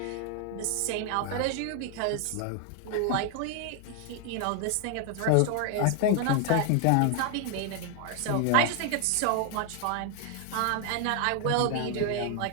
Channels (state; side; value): different; both; correlation 0.00